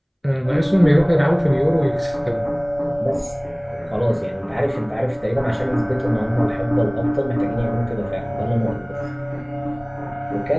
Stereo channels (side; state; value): both; identical; correlation 1.00